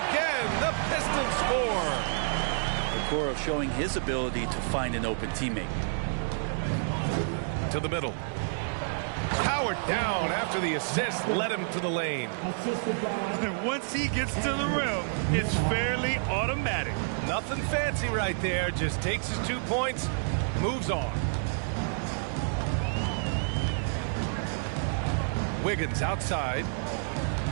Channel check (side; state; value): left; silent; digital silence